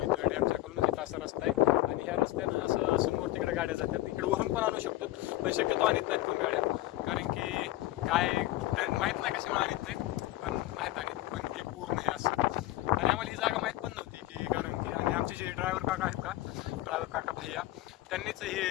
डॅमच्या खालून इथं असा रस्ता आहे. आणि ह्या रस्त्यानं असं समोर तिकडे गाड्या जातात, इकडे वरून पण आणू शकतो पण शक्यतो आणत नाहीत कोण गाड्या, कारण की काय माहीत नाही कशामुळे आणत नाहीत, पण नाहीत आणत. पण हे पूर्ण हे असं. आणि आम्हाला ही जागा माहीत पण नव्हती की, कारण की आणि आमचे जे ड्रायव्हर काका आहेत का, ड्रायव्हर काका भैया, त्यांनीच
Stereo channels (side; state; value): right; quieter; 16.2 dB